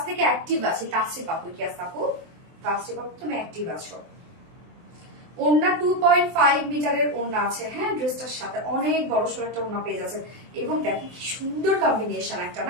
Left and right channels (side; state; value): left; late; 23 ms